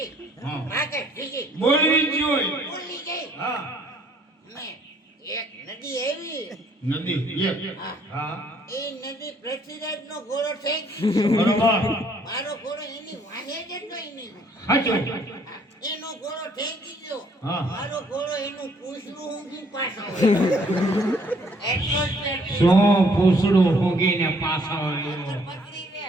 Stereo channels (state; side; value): normal; both; correlation 0.63